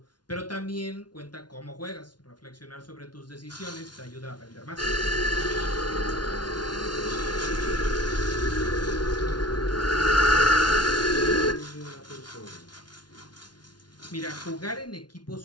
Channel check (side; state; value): right; late; 0.70 ms